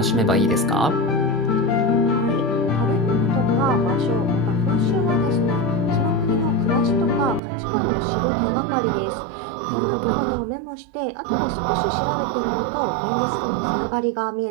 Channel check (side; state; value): left; drops out; at 7.4 s